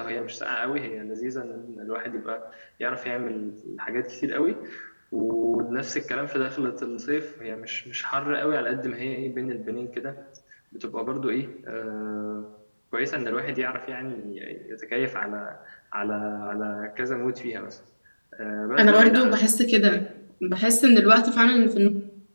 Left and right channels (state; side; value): inverted; both; correlation -1.00